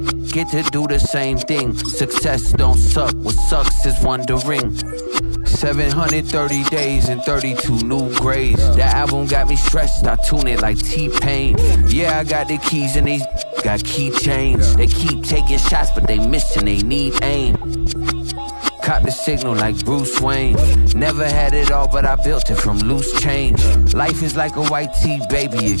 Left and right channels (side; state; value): both; inverted; correlation -1.00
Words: get to do the same thing. Success don't suck, what sucks is wondering. 730 days and 32 new grades. The album got me stressed, I tune it like T-Pain. Yeah, I got the keys and these got keychains. They keep taking shots, but they missing, they need aim. Caught the signal like Bruce Wayne. Never had it all, but I built it from loose change. Life is like a white tee, baby,